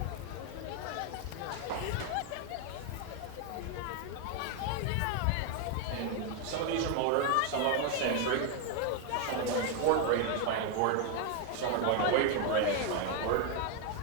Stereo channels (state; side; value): different; both; correlation 0.01